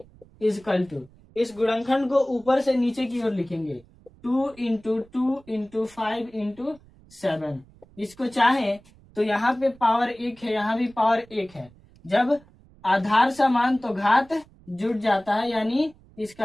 इजकल टू, इस गुणनखंड को ऊपर से नीचे की ओर लिखेंगे, 2 इंटू 2 इंटू 5 इंटू 7। इसको चाहे तो यहाँ पे पावर 1 है, यहाँ भी पावर 1 है। जब आधार समान तो घात जुड़ जाता है, यानी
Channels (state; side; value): noise; right; rumble, 26 dB below the sound